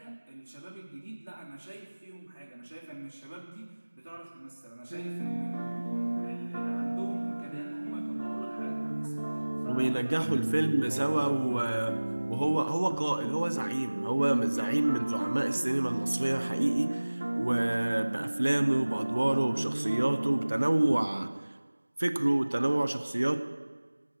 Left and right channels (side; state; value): both; inverted; correlation -1.00